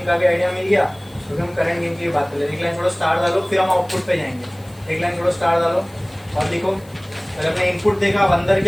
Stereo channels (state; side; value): noise; left; hiss, 26 dB below the sound